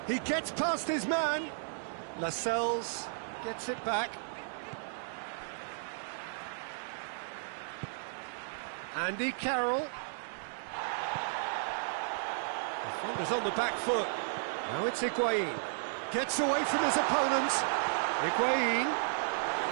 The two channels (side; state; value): left; silent; digital silence